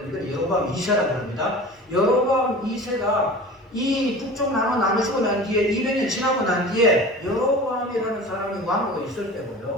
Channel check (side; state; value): both; normal; correlation 0.37